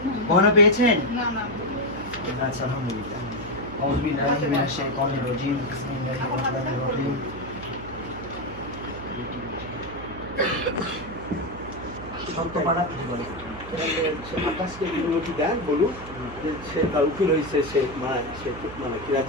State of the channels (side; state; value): right; noise; hum, 14 dB below the sound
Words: গহনা পেয়েছেন? না না আচ্ছা আলহামদুলিল্লাহ। আউযু বিল্লাহি মিনাশ শাইতানির রাজীম। বিসমিল্লাহির রহমানির রহিম। সত্যপাড়া বলো। আকাশকে অনুমতি দেন বলুন যে সে তার উকিল হয়েছে, সে মানে